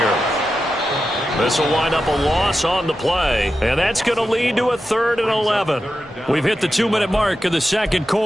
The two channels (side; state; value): both; normal; correlation 0.90